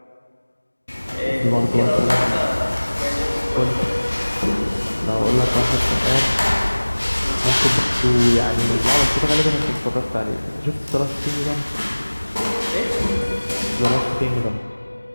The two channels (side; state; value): both; inverted; correlation -1.00